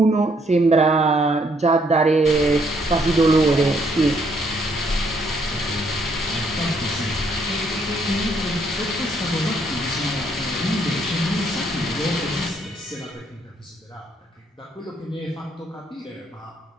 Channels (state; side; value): normal; both; correlation 0.70